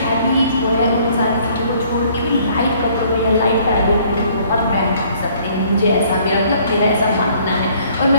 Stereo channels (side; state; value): both; inverted; correlation -0.60